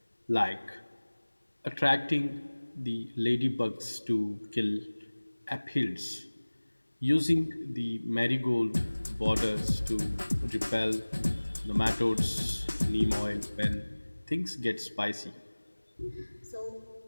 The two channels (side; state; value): both; inverted; correlation -1.00